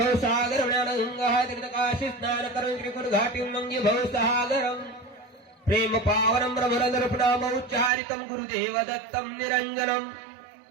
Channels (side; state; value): left; drops out; at 7.9 s